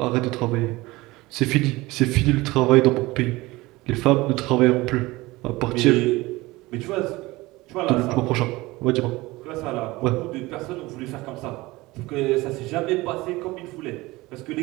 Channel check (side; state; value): left; quieter; 20.6 dB